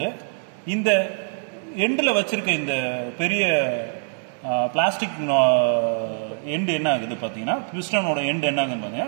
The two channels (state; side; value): silent; left; 63 dB below the other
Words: இந்த எண்ட்ல வச்சிருக்க இந்த பெரிய பிளாஸ்டிக் எண்ட் என்ன ஆகுது பார்த்தீங்கன்னா, பிஸ்டனோட எண்ட் என்ன ஆகுதுன்னு